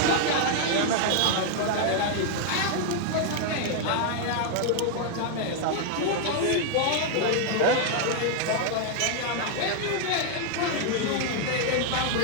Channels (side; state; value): both; different; correlation 0.00